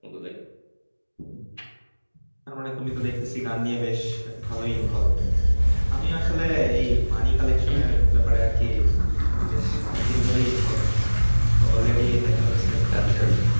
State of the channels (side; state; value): both; inverted; correlation -1.00